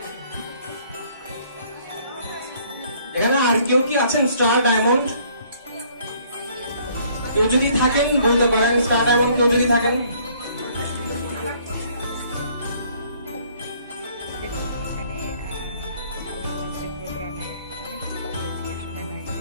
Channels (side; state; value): both; inverted; correlation -0.61